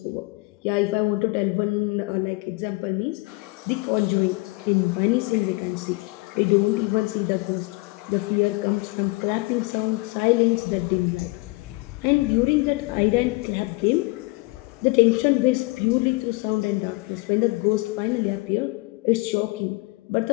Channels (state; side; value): quieter; right; 25.0 dB